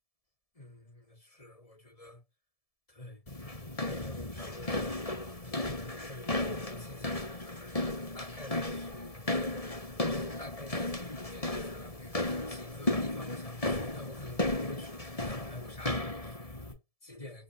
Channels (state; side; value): late; right; 1.7 ms